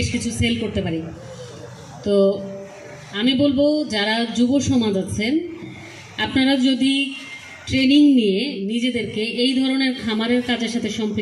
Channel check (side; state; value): both; identical; correlation 1.00